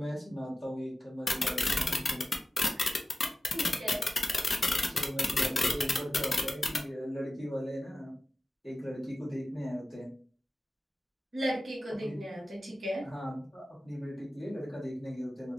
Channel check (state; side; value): normal; both; correlation 0.94